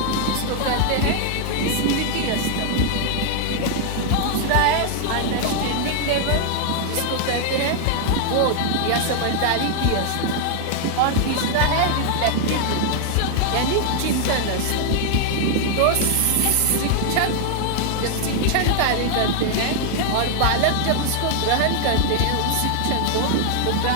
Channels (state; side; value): different; both; correlation 0.00